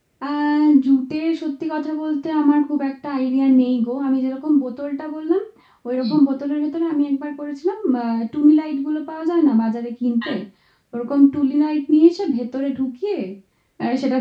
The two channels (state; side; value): identical; both; correlation 1.00